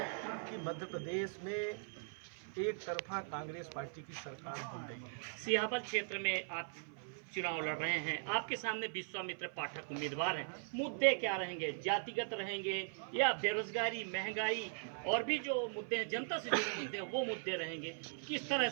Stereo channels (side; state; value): left; silent; 51 dB below the other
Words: कि मध्य प्रदेश में एक तरफा कांग्रेस पार्टी की सरकार बन रही है। सियापत क्षेत्र में आप चुनाव लड़ रहे हैं, आपके सामने विश्वामित्र पाठक उम्मीदवार हैं। मुद्दे क्या रहेंगे? जातिगत रहेंगे या बेरोजगारी, महंगाई और भी जो मुद्दे हैं, जनता से जुड़े मुद्दे हैं, वो मुद्दे रहेंगे? किस तरह